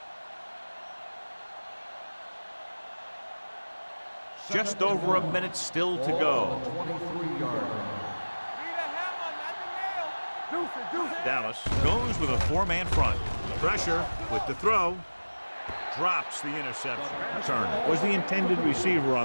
Just over a minute still to go. 23-yard. Dallas goes with a four-man front. Pressure with the throw. Drops the interception. Turner was the intended receiver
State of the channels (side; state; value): both; inverted; correlation -1.00